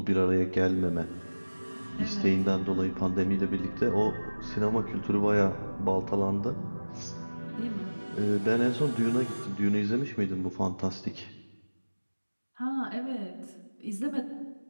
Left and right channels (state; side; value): inverted; both; correlation -1.00